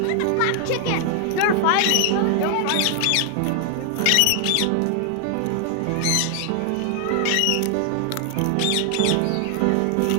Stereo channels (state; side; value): different; both; correlation 0.00